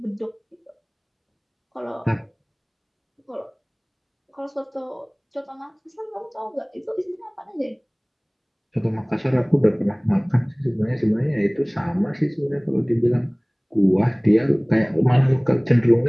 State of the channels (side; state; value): both; identical; correlation 1.00